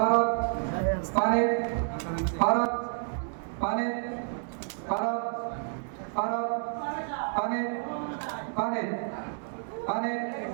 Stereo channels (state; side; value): silent; left; 58 dB below the other